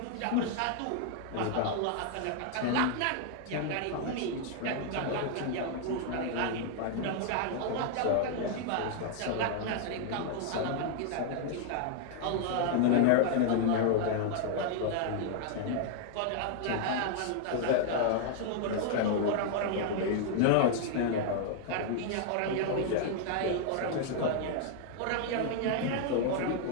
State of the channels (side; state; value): both; different; correlation 0.00